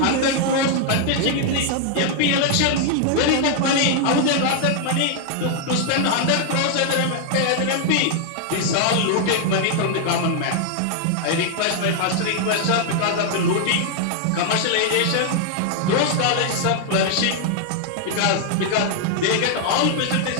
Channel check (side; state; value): both; different; correlation 0.00